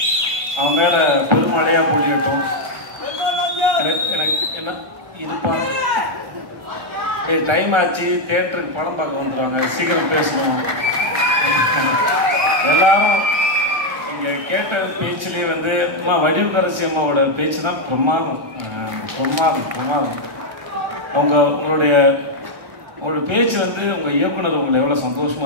அவன் மேலே பெருமழையாக பொழியட்டும். எனக்கு என்ன இருப்பா, டைம் ஆச்சு, தேட்டருக்கு படம் பார்க்க வந்துடுவாங்க, சீக்கிரம் பேசணும். எல்லாரும் இங்கே கேட்ட பேச்சுலேயே வந்து அம்மா வடிவுக்கரசி அம்மாவோட பேச்சு தான் பிரமாதம். உங்களுடைய பேச்சு வந்து உங்கள் இயக்குனர் உங்களை எவ்வளோ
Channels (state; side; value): late; left; 1.3 ms